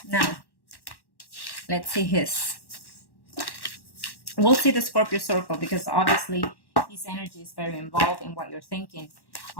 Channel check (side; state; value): right; late; 1.1 ms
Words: now let's see his. We'll see the Scorpio circle because obviously his energy is very involved in what you're thinking